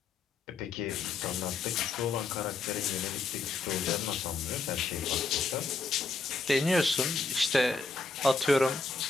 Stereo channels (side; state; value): right; quieter; 4.0 dB